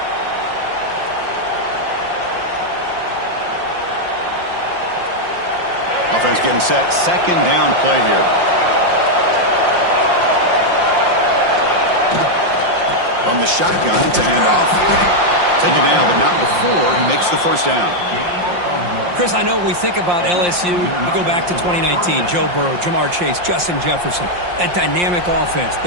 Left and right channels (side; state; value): left; late; 5.7 ms